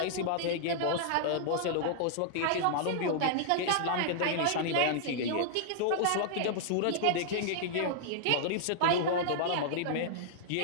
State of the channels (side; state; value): both; different; correlation -0.01